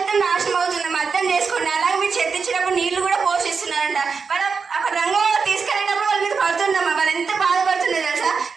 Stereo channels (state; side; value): quieter; left; 5.3 dB